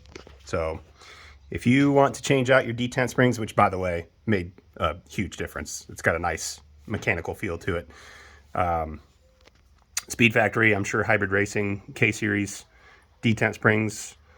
So if you want to change out your detent springs, which by the way made a huge difference, it's got a nice mechanical feel to it. Speed Factory, I'm sure Hybrid Racing K-Series detent springs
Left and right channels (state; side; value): identical; both; correlation 1.00